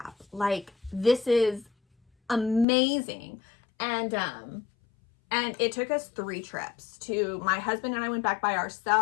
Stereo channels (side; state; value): right; drops out; at 2.7 s